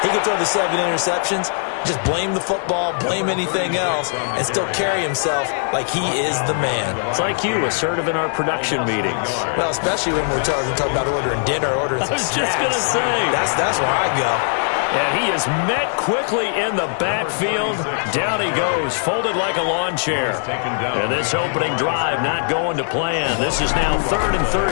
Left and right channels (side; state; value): right; silent; digital silence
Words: He can throw the 7 interceptions, just blame the football, blame anything else, and still carry himself like he is the man. It's like you, assertive in our production meetings. Well, especially when we're talking about ordering dinner, ordering some snacks. I was just going to say. That's where I go. And he is met quickly in the backfield. Down he goes, folded like a lawn chair. And this opening drive not going to plan. This is now 3rd and